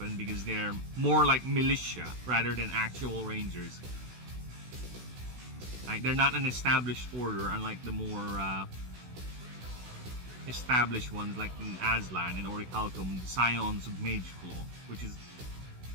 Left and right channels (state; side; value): late; left; 16 ms